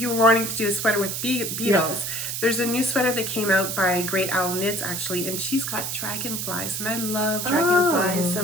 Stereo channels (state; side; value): noise; right; hiss, 3 dB below the sound